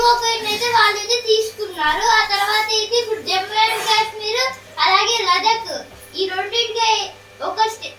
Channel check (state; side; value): identical; both; correlation 1.00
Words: అయితే వాళ్ళైతే తీసుకున్నారు. ఆ తర్వాత అయితే ఇప్పుడు జమ్మూ అండ్ కాశ్మీర్ అలాగే లదాఖ్ ఈ రెండింటికి ఒక